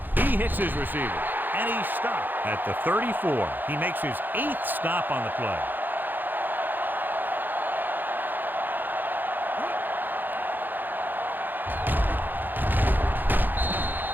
He hits his receiver. And he's stopped at the 34. He makes his 8th stop on the play.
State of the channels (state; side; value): late; left; 0.089 ms